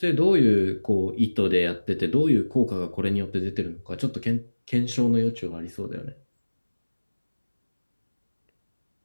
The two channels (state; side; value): inverted; both; correlation -1.00